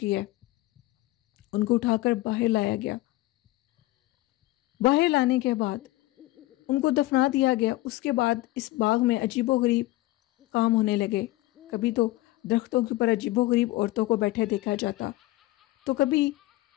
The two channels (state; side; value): quieter; right; 18.1 dB